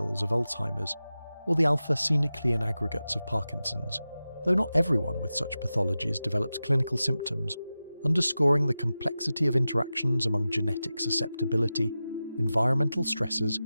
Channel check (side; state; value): both; inverted; correlation -0.94